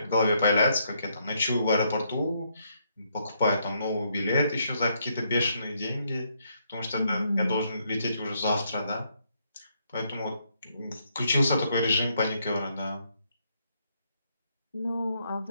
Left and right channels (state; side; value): inverted; both; correlation -0.74